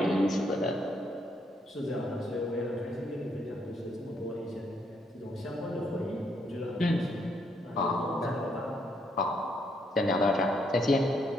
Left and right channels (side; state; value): both; normal; correlation 0.73